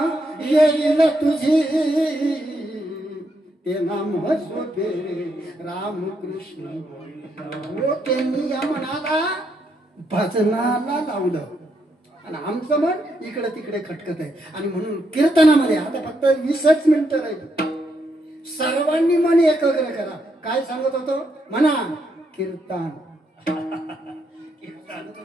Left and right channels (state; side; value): normal; both; correlation 0.78